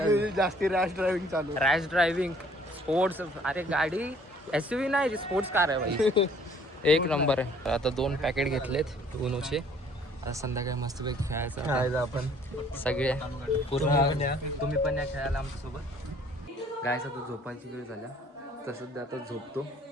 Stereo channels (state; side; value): normal; both; correlation 0.58